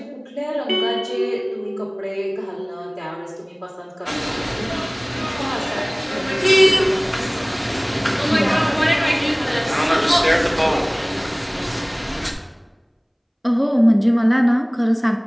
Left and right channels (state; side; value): identical; both; correlation 1.00